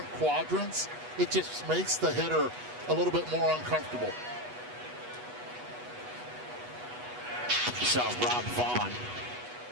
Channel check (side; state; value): left; late; 8.2 ms